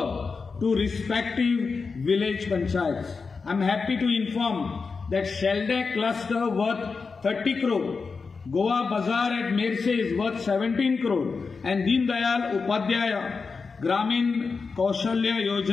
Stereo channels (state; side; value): quieter; right; 4.8 dB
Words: to respective village panchayats. I'm happy to inform that Shelday cluster worth 30 crore, Goa Bazaar at Merse is worth 17 crore, and Deen Dayal Upadhyaya Gramin Kaushalya